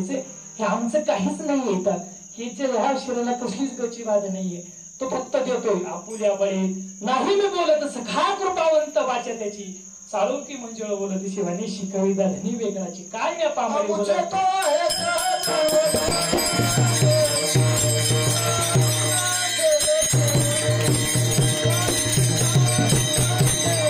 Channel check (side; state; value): both; identical; correlation 1.00